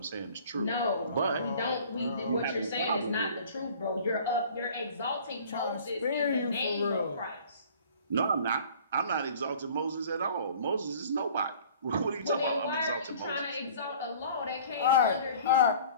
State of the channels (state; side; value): inverted; both; correlation -0.48